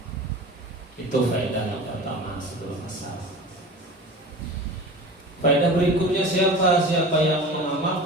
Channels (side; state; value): both; normal; correlation 0.36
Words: Itu faedah yang pertama sebelum asar. Faedah berikutnya, siapa yang